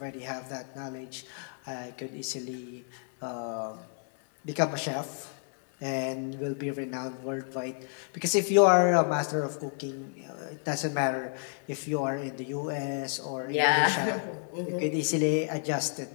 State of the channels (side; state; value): right; silent; 56 dB below the other